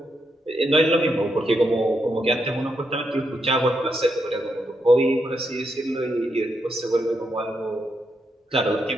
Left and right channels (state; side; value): normal; both; correlation 0.81